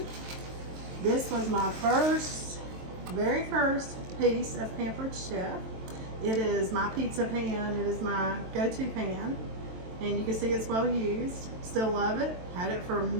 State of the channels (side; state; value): left; late; 23 ms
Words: this was my very first piece of Pampered Chef. It is my pizza pan. It is my go-to pan. And you can see it's well used. Still love it. Had it for